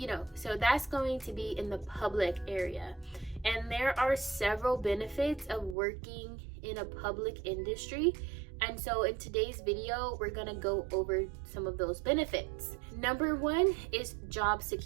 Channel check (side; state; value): left; drops out; at 5.8 s